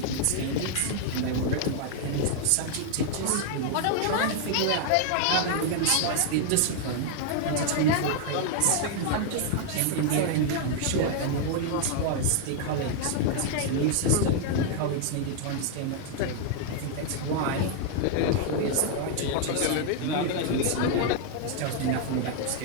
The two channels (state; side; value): different; both; correlation 0.00